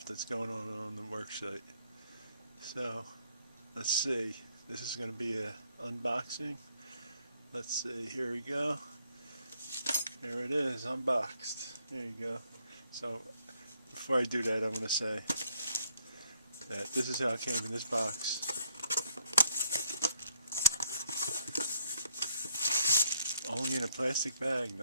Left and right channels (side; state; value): both; inverted; correlation -0.69